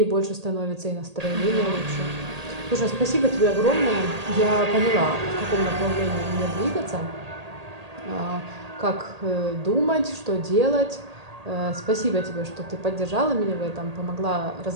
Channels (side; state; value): left; late; 1.8 ms